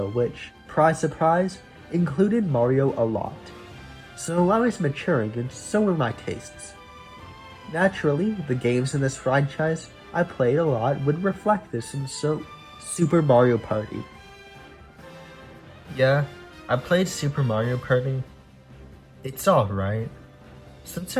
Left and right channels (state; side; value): identical; both; correlation 1.00